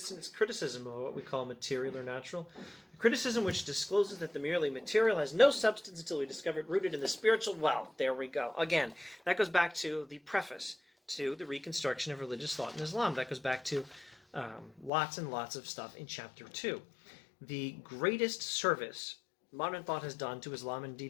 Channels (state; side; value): drops out; right; at 14.9 s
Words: in its criticism of what we call material or natural. A criticism which discloses that the merely material has no substance until we discover it rooted in the spiritual. Well, there we go. Again, that goes back to the preface to the reconstruction of religious thought in Islam. That goes back to lots and lots of stuff in chapter 2. The greatest service modern thought has done to Islam, and